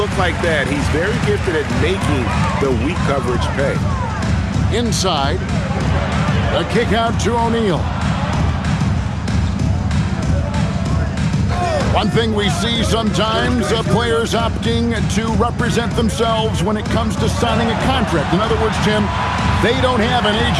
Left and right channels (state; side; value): identical; both; correlation 1.00